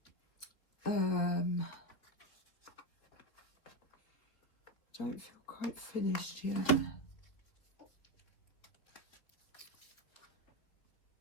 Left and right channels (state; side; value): late; right; 3.7 ms